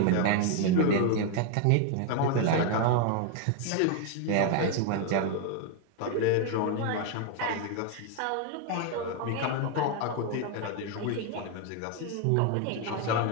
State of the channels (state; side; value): different; both; correlation 0.01